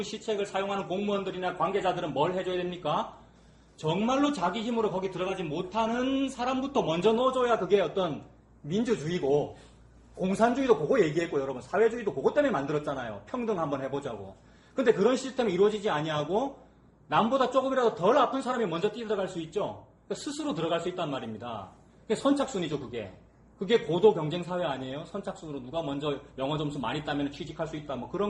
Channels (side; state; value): both; identical; correlation 1.00